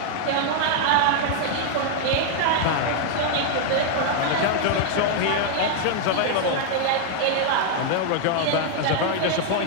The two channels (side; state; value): both; different; correlation 0.00